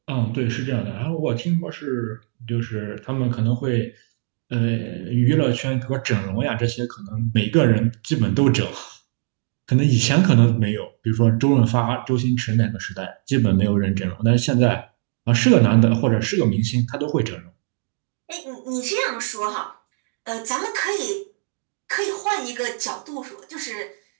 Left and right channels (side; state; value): left; silent; 61 dB below the other